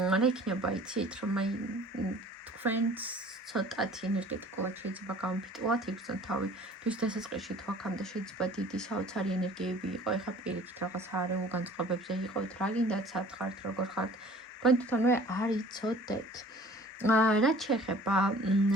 იქნება, იცით, რომ აი თქვენს ცოტათი ენერგეტიკულად შეიძლება გამოფიტულად იგრძნოთ თავი. თვის დასაწყისში თუ აქამდე შეიძლება დიდი საოცარი ენერგიები იყო, ეხლა პირიქით რაღაც არეულ განწყობებზე იყოთ, რა გინდათ, სად ხართ, როგორ ხართ, თქვენ თვითონვე არ იცოდეთ. რაც შეეხება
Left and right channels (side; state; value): both; normal; correlation 0.49